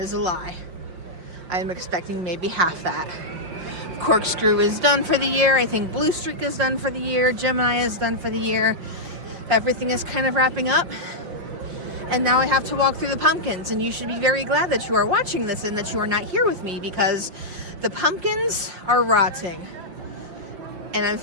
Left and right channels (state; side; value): late; left; 5.7 ms